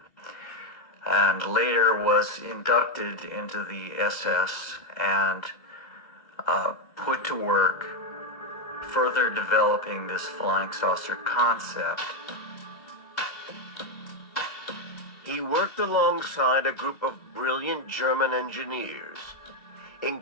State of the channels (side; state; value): right; late; 2.0 ms